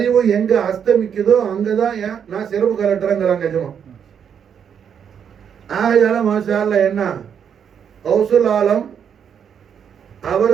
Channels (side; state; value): left; quieter; 7.9 dB